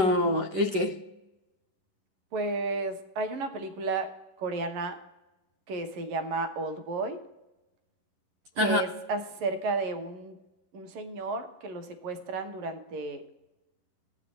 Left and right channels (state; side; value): late; left; 11 ms